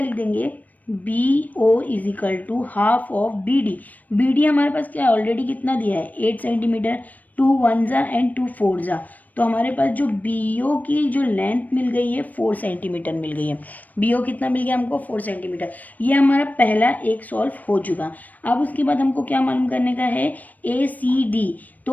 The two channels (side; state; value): right; late; 0.080 ms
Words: देंगे, BO is equal to half of BD। BD हमारे पास क्या ऑलरेडी कितना दिया है, 8 सेंटीमीटर, 2 1 एंड 2 4 तो हमारे पास जो BO की जो लेंथ मिल गई है 4 सेंटीमीटर मिल गई है। BO कितना मिल गया हमको 4 सेंटीमीटर। ये हमारा पहला एक सॉल्व हो चुका। अब उसके बाद हमको क्या मालूम करने का है ACD।